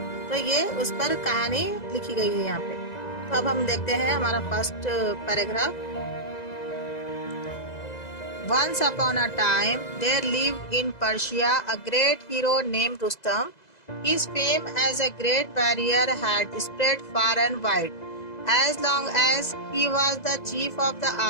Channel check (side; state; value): right; late; 2.0 ms